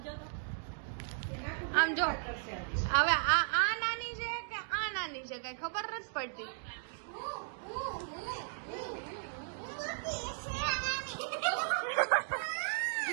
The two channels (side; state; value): left; silent; digital silence